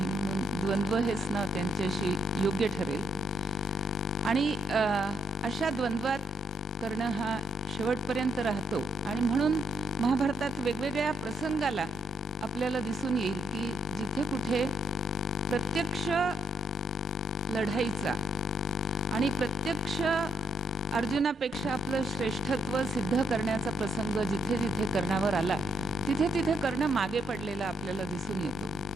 म्हणून द्वंद्व हेच नाव त्यांच्याशी योग्य ठरेल. आणि अशा द्वंद्वात कर्ण हा शेवटपर्यंत राहतो आणि म्हणून महाभारतात वेगवेगळ्या प्रसंगाला आपल्याला दिसून येईल की जिथे कुठे प्रत्यक्ष लढाईचा आणि प्रत्यक्ष अर्जुनापेक्षा आपलं श्रेष्ठत्व सिद्ध करण्याचा प्रसंग जिथे जिथे कर्णावर आला तिथे तिथे कर्ण मागे पडलेला आपल्याला दिसून येतो.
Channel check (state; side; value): normal; both; correlation 0.75